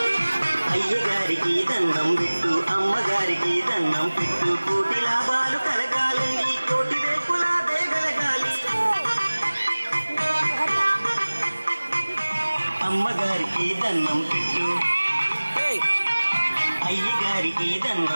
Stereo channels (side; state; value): both; inverted; correlation -1.00